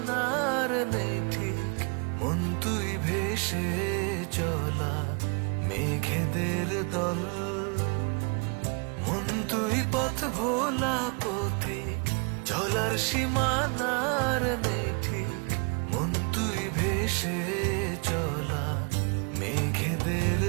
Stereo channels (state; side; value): quieter; left; 34.7 dB